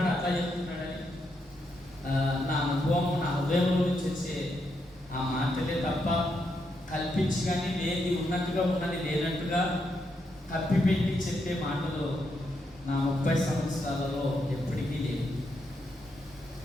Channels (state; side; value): normal; both; correlation 0.80